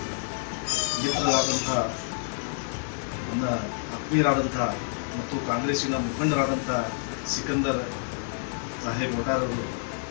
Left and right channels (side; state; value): right; silent; digital silence